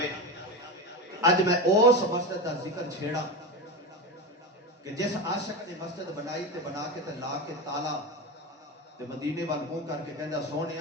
اج میں اس مسجد دا ذکر چھیڑا کہ جس عاشق نے مسجد بنائی تے بنا کے تے لا کے تالا تے مدینے وال منہ کر کے کہندا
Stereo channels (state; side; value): normal; both; correlation 0.19